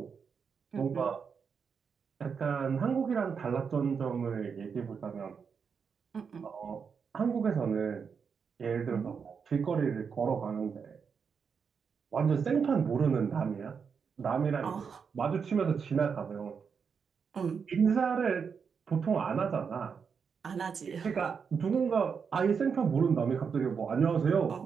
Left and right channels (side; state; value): left; quieter; 6.2 dB